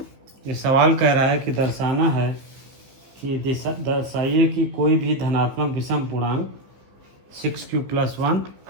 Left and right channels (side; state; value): left; late; 15 ms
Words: ये सवाल कह रहा है कि दर्शाना है कि दर्शाइए कि कोई भी धनात्मक विषम पूर्णांक 6q+1,